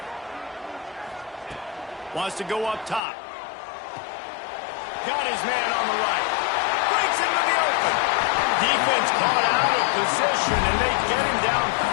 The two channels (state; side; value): drops out; right; at 3.0 s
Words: Wants to go up top. Got his man on the right. Breaks into the open. Defense caught out of position, and they get him down